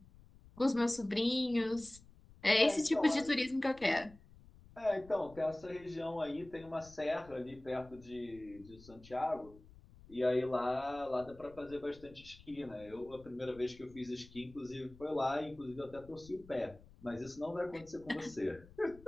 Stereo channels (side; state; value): left; noise; rumble, 22 dB below the sound